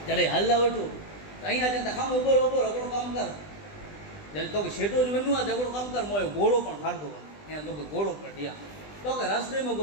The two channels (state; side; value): late; right; 20 ms